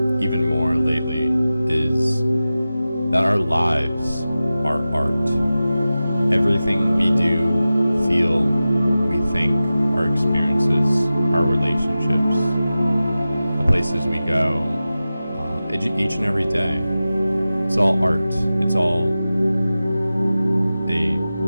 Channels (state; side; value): inverted; both; correlation -0.95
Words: even more lately is that our lives are art. Everything we do, feel, we think, our experiences, our relationships, the places we go, each and every day, it's all art. It's all a